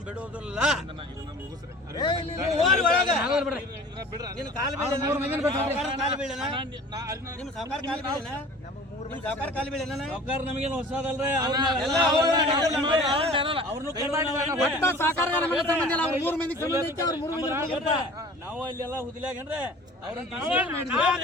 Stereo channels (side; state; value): both; normal; correlation 0.44